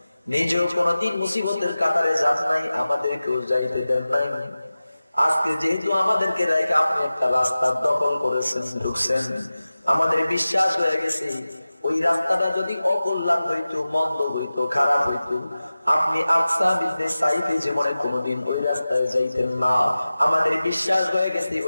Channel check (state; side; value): inverted; both; correlation -0.96